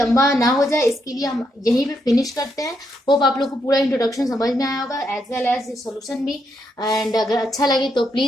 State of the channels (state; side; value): normal; both; correlation 0.79